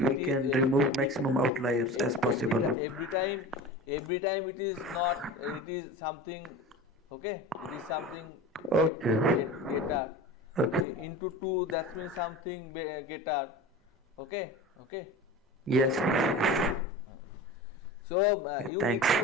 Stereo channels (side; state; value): both; normal; correlation 0.33